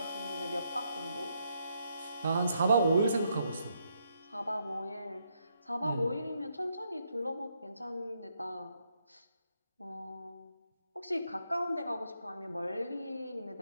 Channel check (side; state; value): both; inverted; correlation -0.77